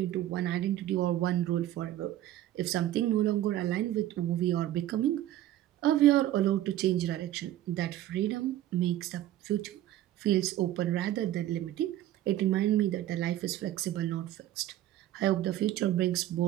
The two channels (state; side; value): quieter; left; 13.4 dB